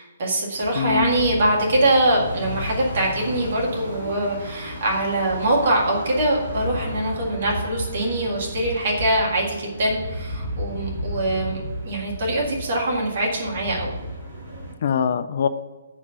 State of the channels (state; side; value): inverted; both; correlation -0.67